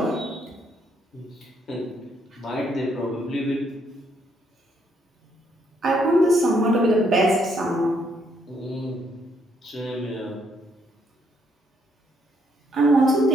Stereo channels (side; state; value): both; normal; correlation 0.72